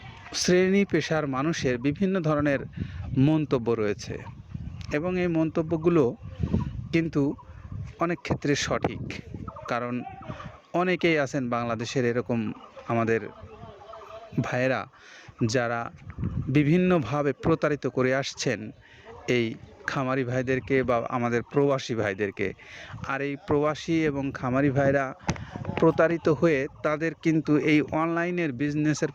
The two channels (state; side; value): identical; both; correlation 1.00